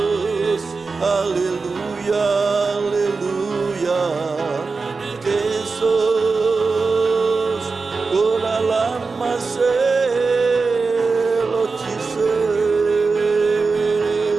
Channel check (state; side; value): quieter; left; 4.3 dB